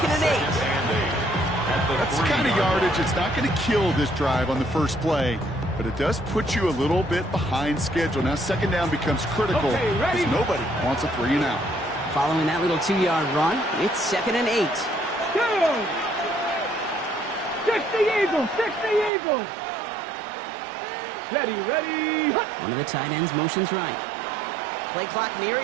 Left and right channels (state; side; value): drops out; left; at 19.1 s